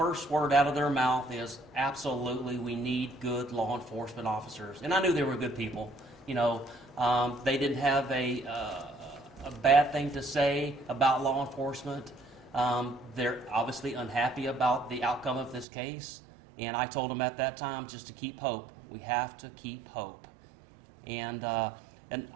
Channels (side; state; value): left; drops out; at 15.7 s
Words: word out of their mouth is, absolutely, we need good law enforcement officers. And I knew they were good people. You know, they didn't have a bad thing to say about law enforcement. They're obviously unhappy about the outcome of this case. And I told them at that time just to keep hope. We have to keep hope. And